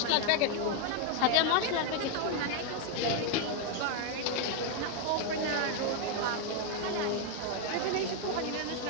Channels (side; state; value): both; different; correlation 0.01